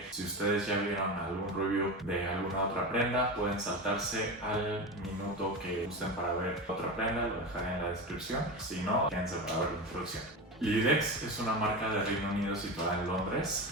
si ustedes ya vieron algún review de alguna otra prenda pueden saltarse al minuto que gusten para ver otra prenda, lo dejaré en la descripción, si no, quédense para ver la introducción. Libidex es una marca de Reino Unido situada en Londres.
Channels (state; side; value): normal; both; correlation 0.23